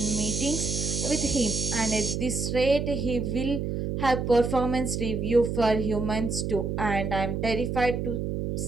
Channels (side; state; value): right; noise; hum, 2 dB below the sound